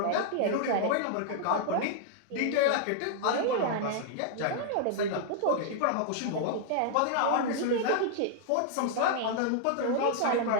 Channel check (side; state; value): both; different; correlation -0.01